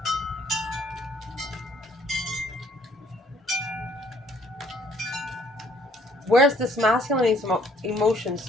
Where's this masculine emotions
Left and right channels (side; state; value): both; normal; correlation 0.62